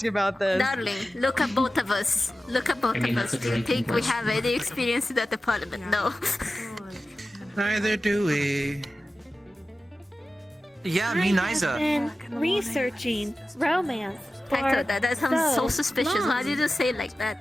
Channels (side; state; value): both; normal; correlation 0.94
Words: about this. Darling, look at both of us. Look at both I mean, of us. that's a Do you drinking think we question. have any experience in that department? No. Neither do we. Yeah, I me have neither. been researching romance for Hector, that sounds so so suspicious. long. Why did you say it like